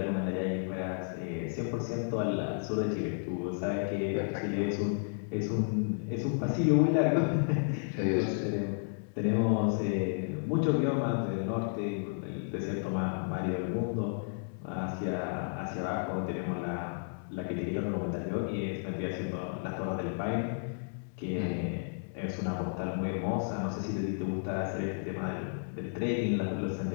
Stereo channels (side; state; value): right; silent; digital silence